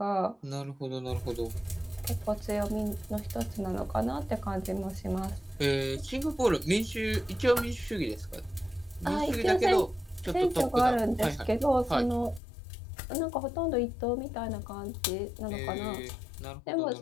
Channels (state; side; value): drops out; right; at 12.4 s